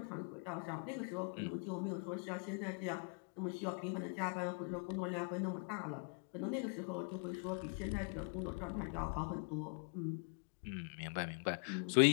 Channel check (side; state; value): right; quieter; 38.6 dB